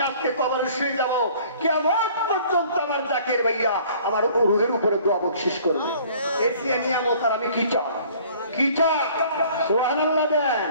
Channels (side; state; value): both; inverted; correlation -0.53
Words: আজকে কবরে শুয়ে যাবো, কিয়ামত পর্যন্ত আমার জাকির ভাইয়া আমার রুহের উপরে দোয়া বকশিশ করবে। এর চেয়ে নিয়ামত আর আমি কি চাই? কি চাই? সুবহানাল্লাহ দেন।